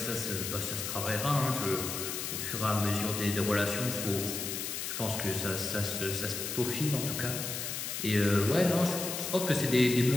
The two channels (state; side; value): noise; left; hiss, 4 dB below the sound